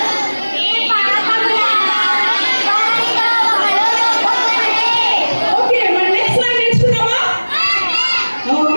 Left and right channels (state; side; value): inverted; both; correlation -1.00